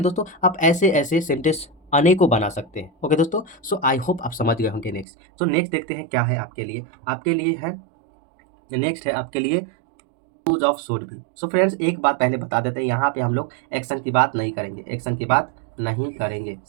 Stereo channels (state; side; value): drops out; left; at 5.1 s